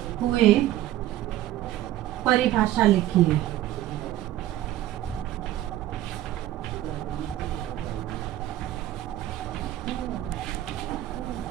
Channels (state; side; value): quieter; left; 14.0 dB